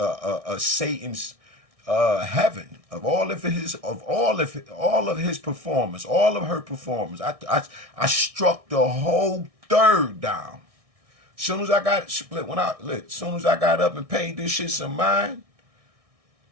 Satan's heaven, of all of his performance, all of her performance. I struck the whole third down. Soon as I got up and paid this shit some mind,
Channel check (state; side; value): late; left; 1.6 ms